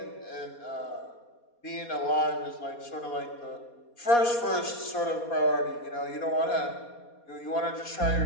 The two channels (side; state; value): right; late; 4.2 ms